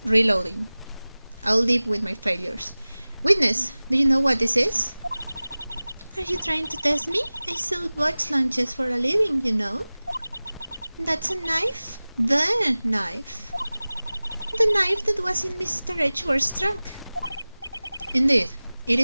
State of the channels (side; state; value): both; inverted; correlation -0.98